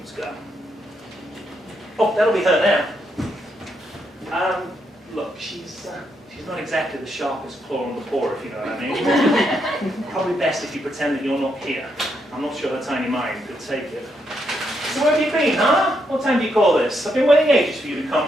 go. Oh, that'll be her now. Look, she's not exactly the sharpest claw on the paw, if you know what I mean. Probably best if you pretend that you're not here. I'm not sure her tiny mind could take it. So where have you been, huh? What time do you call this? I've been waiting ages for you to come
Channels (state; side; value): normal; both; correlation 0.79